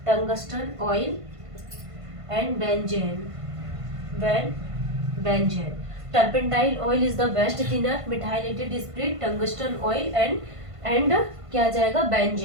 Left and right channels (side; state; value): left; late; 1.5 ms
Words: and benzene. Turpentine oil is the best thinner, methylated spirit, tungsten oil and क्या आ जाएगा?